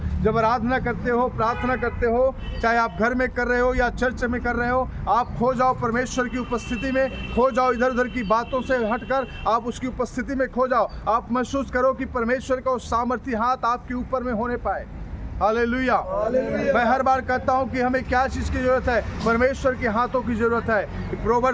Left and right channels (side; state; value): both; identical; correlation 1.00